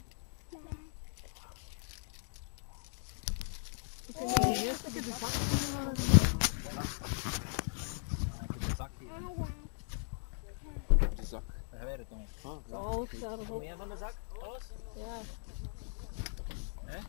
Eerst heb je de zak. De zak. Daar gaan wij het dan. Zo, staat erop. Meer van de zak? Alles? Ja. Hè?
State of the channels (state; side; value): silent; right; digital silence